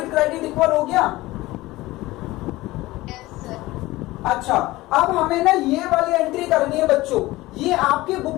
क्रेडिट इक्वल हो गया। अच्छा, अब हमें ना ये वाली एंट्री करनी है बच्चों। ये आपके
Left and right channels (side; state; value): right; quieter; 18.8 dB